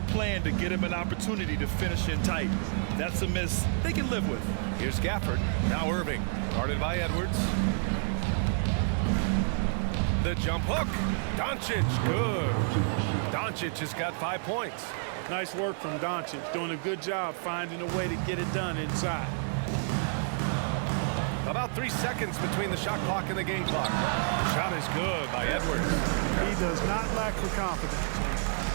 plan, to get him an opportunity to finish in tight. That's a miss they can live with. Here's Gafford. Now Irving. Guarded by Edwards. The jump hook. Doncic. Good. Doncic has got 5 points. Nice work from Doncic. Doing a good job finding a way to get it done inside. About 3 seconds between the shot clock and the game clock. Shot is good by Edwards. He does not lack for confidence.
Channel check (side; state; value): left; silent; 58 dB below the other